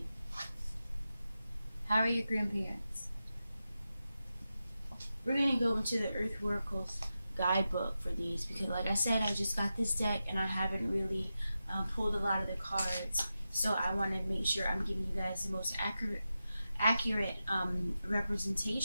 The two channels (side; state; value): both; inverted; correlation -0.91